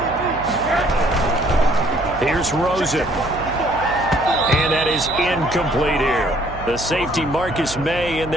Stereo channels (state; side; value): noise; right; hum, 13 dB below the sound